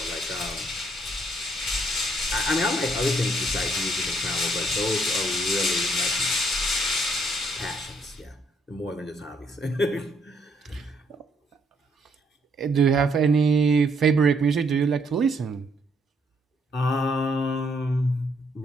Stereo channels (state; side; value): normal; both; correlation 0.70